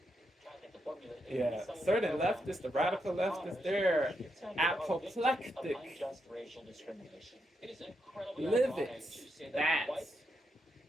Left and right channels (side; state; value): both; normal; correlation 0.82